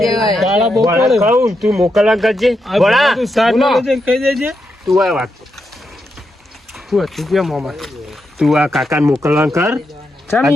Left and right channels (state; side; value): normal; both; correlation 0.84